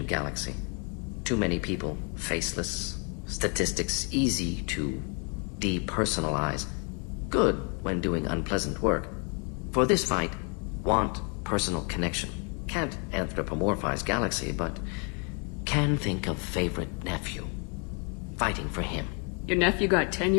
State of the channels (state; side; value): quieter; right; 36.3 dB